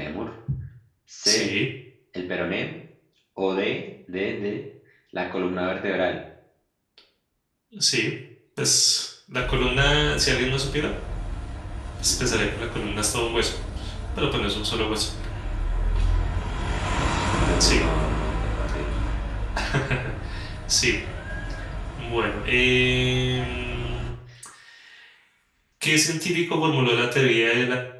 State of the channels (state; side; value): identical; both; correlation 1.00